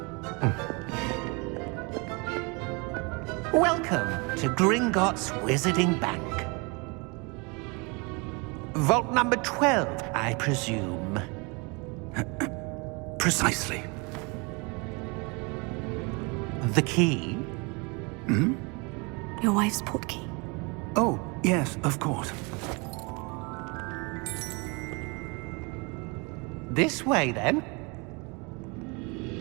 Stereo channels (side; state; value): left; quieter; 29.7 dB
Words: Welcome to Gringotts Wizarding Bank. Vault number 12, I presume. Precisely. The key? Your wife's portkey. Oh, yes, of course. This way, then.